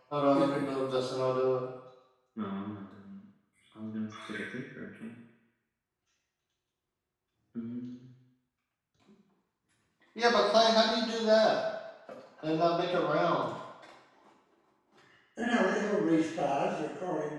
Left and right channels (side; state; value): both; identical; correlation 1.00